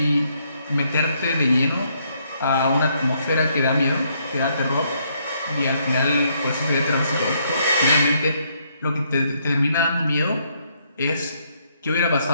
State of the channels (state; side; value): inverted; both; correlation -0.72